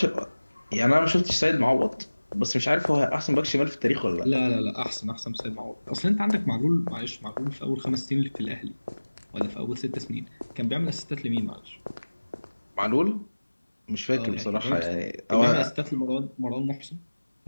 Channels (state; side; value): inverted; both; correlation -1.00